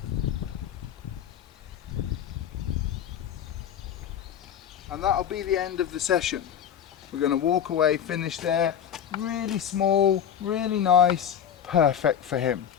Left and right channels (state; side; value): quieter; right; 9.1 dB